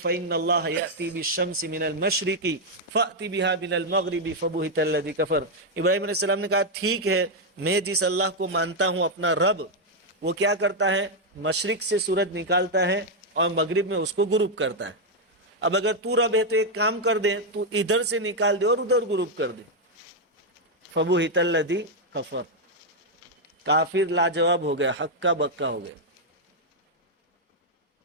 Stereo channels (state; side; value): normal; both; correlation 0.00